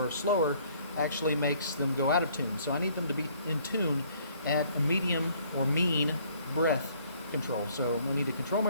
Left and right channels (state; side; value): inverted; both; correlation -0.61